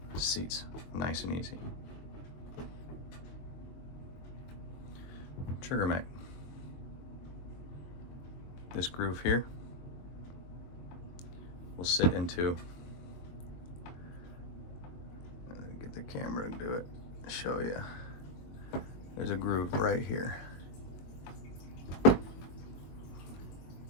Seats, nice and easy. Trigger mag. This groove here will sit into, get the camera to do it, show you. There's a groove right here.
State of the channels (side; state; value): right; late; 22 ms